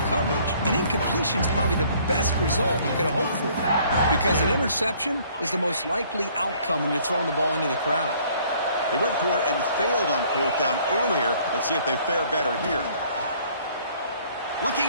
coverage. An incompletion is probably the best result you could have hoped for, because an interception is the most likely outcome when you're throwing the ball into the crowd. They went for it and failed on 4th down earlier. Let's see if they fare better here.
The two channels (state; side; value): inverted; both; correlation -0.59